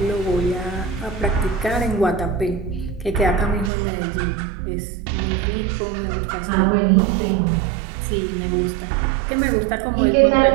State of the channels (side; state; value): left; drops out; at 3.7 s